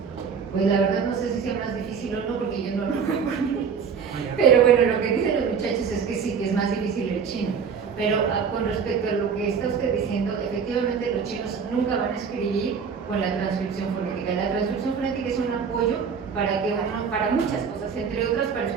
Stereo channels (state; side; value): quieter; left; 6.4 dB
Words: Pues la verdad no sé si sea más difícil o no, porque yo no lo japonés. Pero bueno, lo que dicen los muchachos es que sí, que es más difícil el chino. Pero con respecto a lo que está usted diciendo, efectivamente los chinos nunca van a escribir con la transcripción fonética. La transcripción fonética es un apoyo para muchas cosas, entre otras para